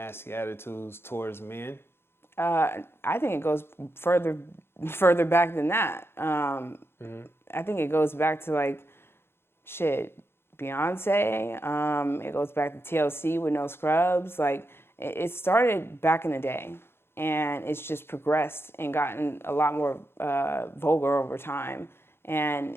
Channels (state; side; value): late; right; 0.11 ms